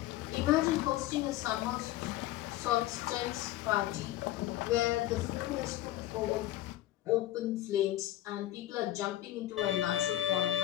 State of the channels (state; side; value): quieter; right; 14.6 dB